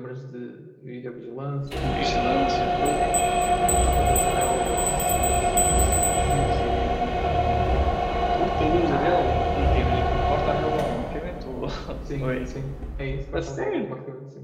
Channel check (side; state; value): both; identical; correlation 1.00